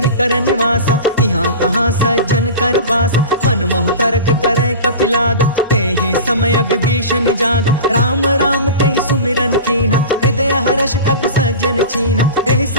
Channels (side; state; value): both; inverted; correlation -0.32